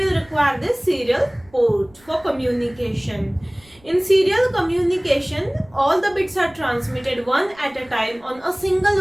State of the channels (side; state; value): right; noise; rumble, 28 dB below the sound